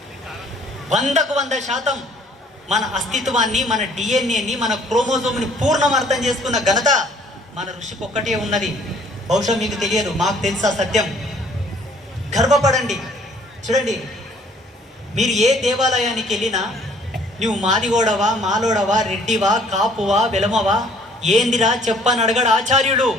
100% మన అస్తిత్వాన్ని, మన డిఎన్ఏని, మన క్రోమోజోమ్ని పూర్ణం అర్థం చేసుకున్న ఘనత మన ఋషికి ఒక్కటే ఉన్నది. బహుశా మీకు తెలియదు, మాకు తెలుసా సత్యం. గర్వపడండి. చూడండి, మీరు ఏ దేవాలయానికి వెళ్ళినా నువ్వు మాదిగోడవా, మాలోడవా, రెడ్డివా, కాపువా, వెలమవా, ఏందిరా చెప్పని అడగడు ఆచార్యుడు.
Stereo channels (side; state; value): both; normal; correlation 0.59